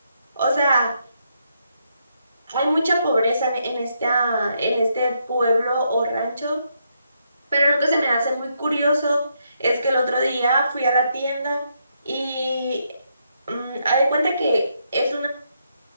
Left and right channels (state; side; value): inverted; both; correlation -0.78